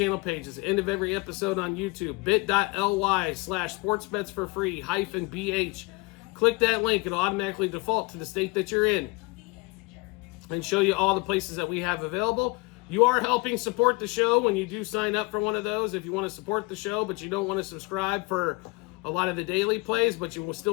pages. End of every episode on YouTube. bit.ly/sportsbetsforfree-bh. Click that link. It'll automatically default to the state that you're in and show you all the places that we have available. You are helping support the show when you do sign up for one of those. If you want to support the show, but you don't want to subscribe for a lot of the daily plays, but you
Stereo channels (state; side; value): quieter; right; 27.3 dB